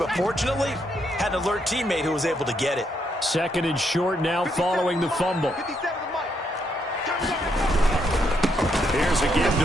fortunately, had an alert teammate who was able to get it. Second and short now following the fumble. Here's a give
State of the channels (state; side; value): normal; both; correlation 0.76